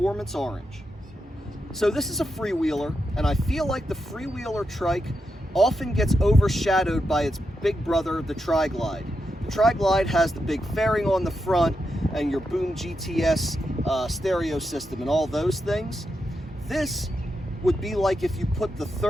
Orange. So this is a Freewheeler, and I feel like the Freewheeler trike often gets overshadowed by its big brother, the Tri-Glide. The Tri-Glide has the big fairing on the front and your Boom GTS stereo system and all those things. This would be like if you put the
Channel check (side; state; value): both; normal; correlation 0.86